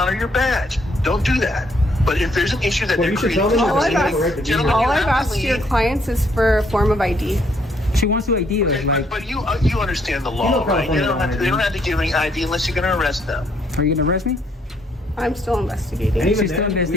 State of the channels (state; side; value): normal; both; correlation 0.69